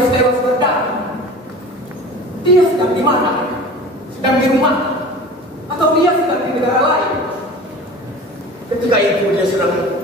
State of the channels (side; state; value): both; normal; correlation 0.39